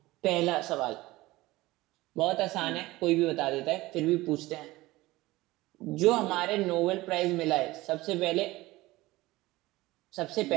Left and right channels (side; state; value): left; quieter; 19.2 dB